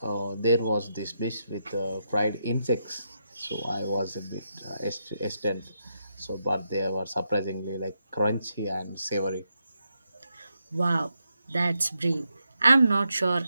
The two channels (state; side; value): inverted; both; correlation -0.83